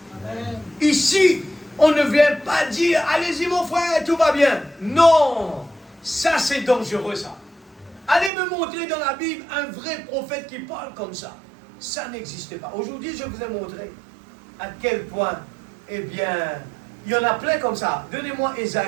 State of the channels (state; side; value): drops out; left; at 8.3 s